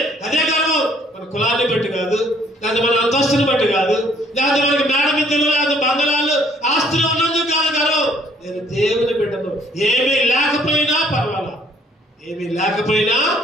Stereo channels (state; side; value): normal; both; correlation 0.62